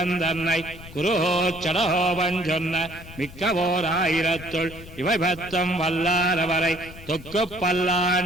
தன்னை குருஹோ சடஹோபன் சொன்ன மிக்கவோர் ஆயிரத்துள் இவை பத்தம் வல்லாரவரை தொக்கு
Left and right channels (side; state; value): left; noise; rumble, 16 dB below the sound